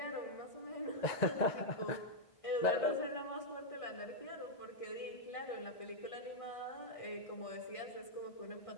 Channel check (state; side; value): late; right; 1.6 ms